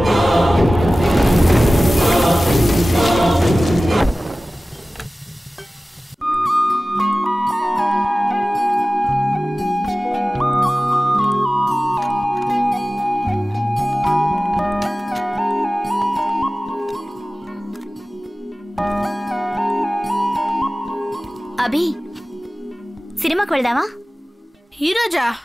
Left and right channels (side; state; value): both; normal; correlation 0.97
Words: అభి, సినిమాకి వెళ్దామా? ఈరోజా?